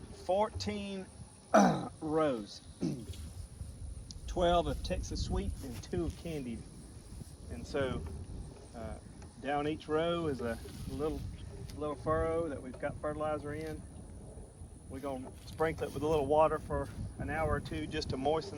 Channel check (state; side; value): identical; both; correlation 1.00